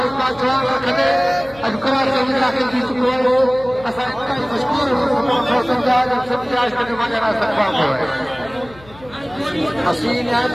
जान रखंदे अॼु कराची में दाख़िल थी चुको आहे। असां इंतहाई मशहूर आहियूं सिंध जा जन सिंध जे आशिक़ जो मौजूदा इस्तक़बाल कयो आहे। असीं निहायत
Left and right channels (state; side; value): noise; left; hum, 22 dB below the sound